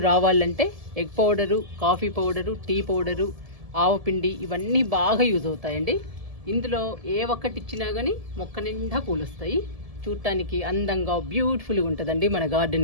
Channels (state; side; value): late; left; 1.7 ms